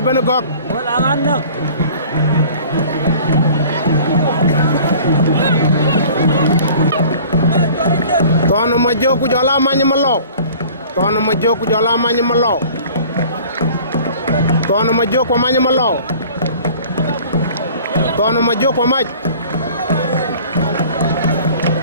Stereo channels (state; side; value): inverted; both; correlation -0.47